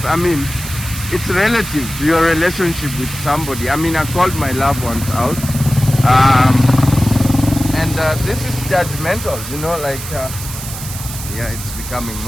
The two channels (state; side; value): noise; right; hiss, 10 dB below the sound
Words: I mean, it's relative to your relationship with somebody. I mean, I called my loved ones out, and this is judgmental, you know, like, yeah, it's becoming